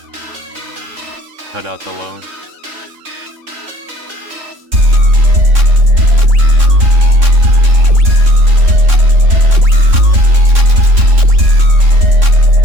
Cut out the low.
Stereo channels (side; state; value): left; late; 3.6 ms